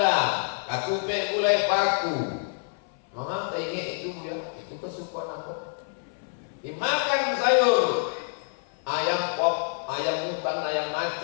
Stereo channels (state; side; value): silent; right; 60 dB below the other